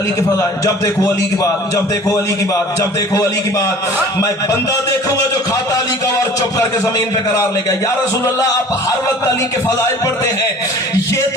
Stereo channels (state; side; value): normal; both; correlation 0.46